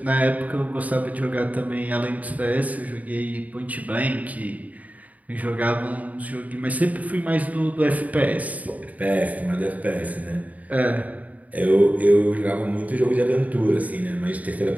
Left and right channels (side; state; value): left; late; 0.073 ms